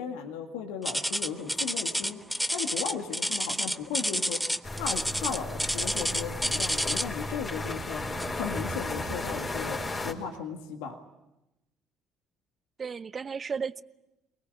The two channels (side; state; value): both; normal; correlation 0.79